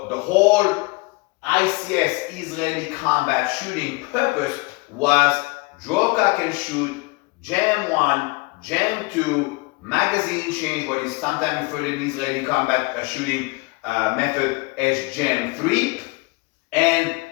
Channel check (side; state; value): right; quieter; 25.6 dB